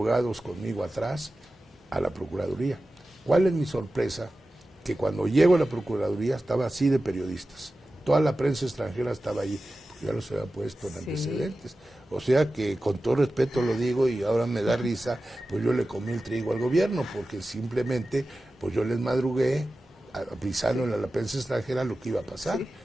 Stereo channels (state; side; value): normal; both; correlation 0.94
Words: conmigo atrás, a la Procuraduría. ¿Cuál es mi sorpresa? Que cuando llego a la Procuraduría estaba así de periodistas. Toda la prensa extranjera estaba allí, porque ya los había puesto en antecedentes. O sea que con todo respeto lo digo y ahora me da risa, pues yo le comí el trigo al gobierno, porque simplemente pues yo les madrugué avisándole a la prensa extranjera lo que iba a pasar. Sí.